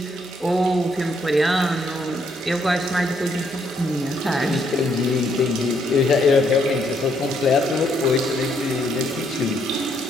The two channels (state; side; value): normal; both; correlation 0.72